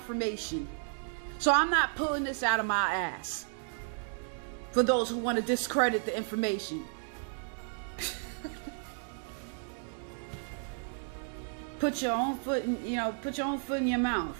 So I'm not pulling this out of my ass for those who want to discredit the information. Put your own foot in your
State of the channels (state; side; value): silent; left; 56 dB below the other